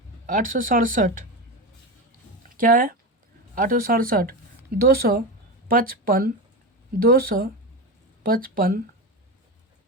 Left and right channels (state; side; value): normal; both; correlation 0.20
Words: 867 क्या है, 867